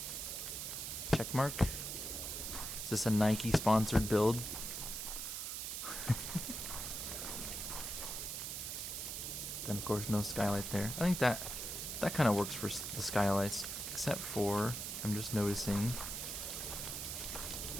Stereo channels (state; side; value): noise; right; hiss, 4 dB below the sound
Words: Check mark. Is this a Nike sponsored build? Then of course no skylight there. I think that kind of works for the skylights, except for I'm just noticing